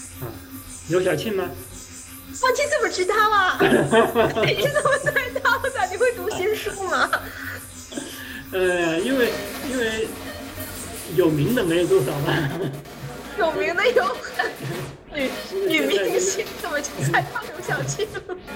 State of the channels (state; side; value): identical; both; correlation 1.00